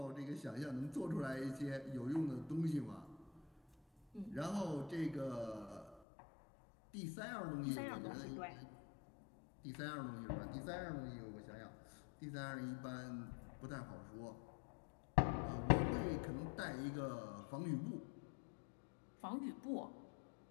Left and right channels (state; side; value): drops out; right; at 6.0 s